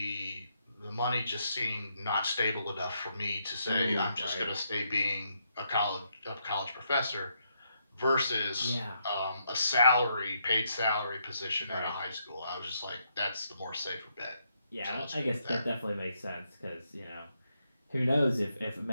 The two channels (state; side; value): inverted; both; correlation -0.78